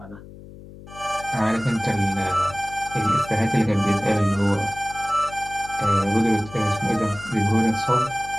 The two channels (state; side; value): noise; left; hum, 17 dB below the sound